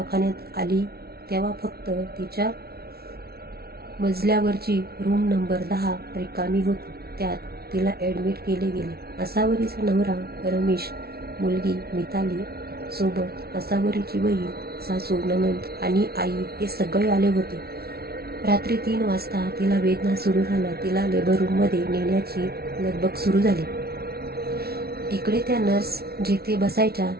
आली तेव्हा फक्त तिच्या मजल्यावरची रूम नंबर 10 रिकामी होती. त्यात तिला ॲडमिट केले गेले. असावरीचा नवरा रमेश, मुलगी मिताली सोबत असावरीची बहीण, सासू, नणंद आणि आई हे सगळे आले होते. रात्री 3 वाजता तिला वेदना सुरू झाल्या. तिला लेबर रूममध्ये नेण्याची लगबग सुरू झाली. इकडे त्या नर्स जिथे बसायच्या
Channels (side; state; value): left; late; 0.45 ms